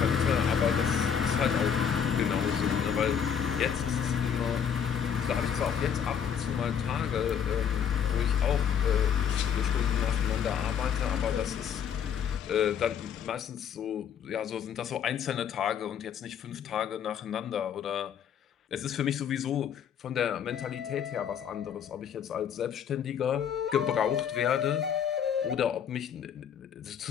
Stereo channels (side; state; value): right; quieter; 7.9 dB